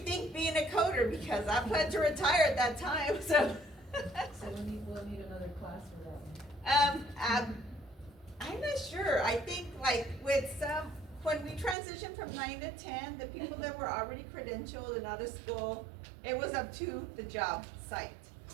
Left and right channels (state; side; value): drops out; left; at 11.8 s